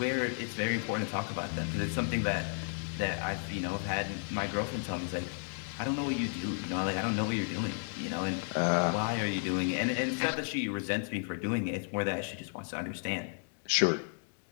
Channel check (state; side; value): silent; right; 56 dB below the other